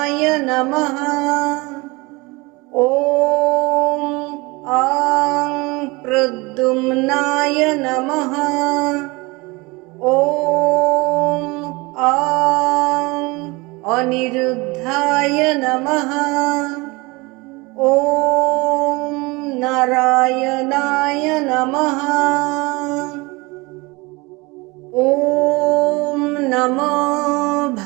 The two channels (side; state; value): left; quieter; 24.6 dB